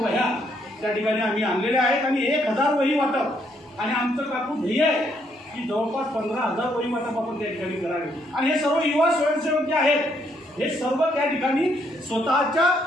त्या ठिकाणी आम्ही आणलेल्या आहेत आणि 1000 वही वाटप आणि आमचं काकू ध्येय आहे की जवळपास 15,000 वहिवाटप आपण त्या ठिकाणी करावे. आणि हे सर्व युवा स्वयंसेवक जे आहेत हे सर्व त्या ठिकाणी स्वतःच्या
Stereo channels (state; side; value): normal; both; correlation 0.72